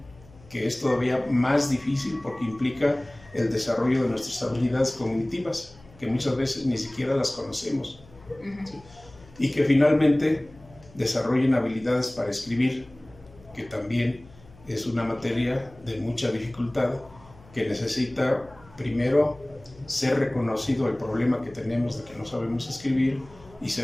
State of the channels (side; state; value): left; noise; hum, 24 dB below the sound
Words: que es todavía más difícil porque implica el desarrollo de nuestras habilidades cognitivas, que muchas veces ni siquiera las conocemos. ¿Sí? Y que finalmente desarrollen habilidades para escribir, que también es una materia de mucha dificultad, que necesita primero ser reconocido el problema que tenemos de que no sabemos escribir, y